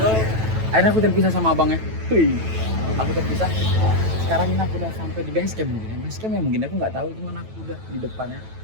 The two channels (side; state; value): left; late; 9.1 ms